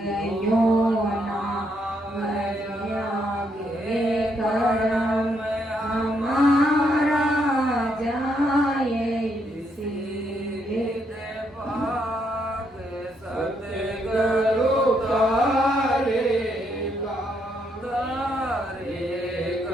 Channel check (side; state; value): both; normal; correlation 0.75